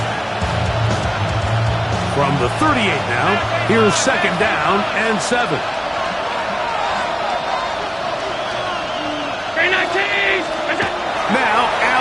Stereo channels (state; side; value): identical; both; correlation 1.00